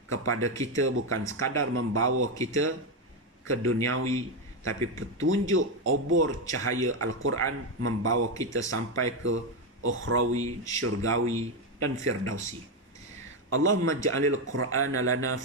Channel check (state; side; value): normal; both; correlation 0.08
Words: kepada kita, bukan sekadar membawa kita ke duniawi, tapi petunjuk obor cahaya Al-Quran membawa kita sampai ke ukhrawi, syurgawi dan firdausi. Allahumma ja'alil Qur'ana lana